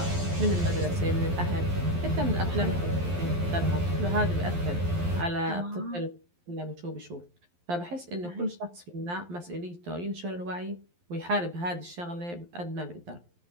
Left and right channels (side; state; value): left; late; 11 ms